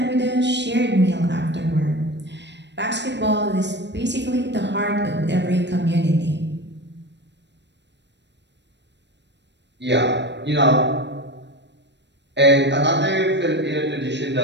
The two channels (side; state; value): left; late; 0.51 ms